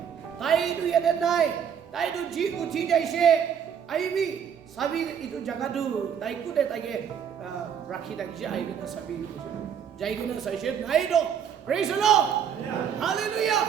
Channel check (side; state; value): left; quieter; 8.1 dB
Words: tai tu yede nai tai tu ji uthi jaise aibi sabi itu jaga tu tai ku de tai ke rakhi dakise aibi na sabi jai guna saise nai do praise the Lord hallelujah